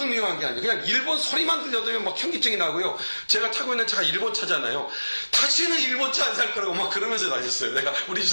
미워한 게 아니에요. 그냥 일본 소리만 들려도 막 현기증이 나고요. 제가 타고 있는 차가 일본 차잖아요. 다시는 일본 차 안 살 거라고 막 그러면서 다녔어요. 내가 우리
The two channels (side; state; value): both; inverted; correlation -1.00